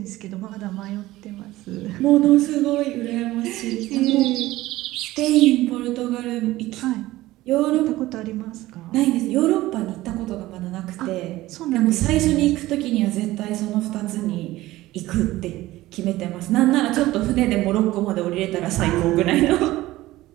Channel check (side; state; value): left; quieter; 17.1 dB